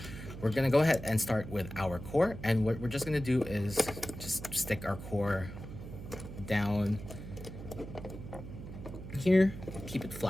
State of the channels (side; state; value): right; noise; hum, 11 dB below the sound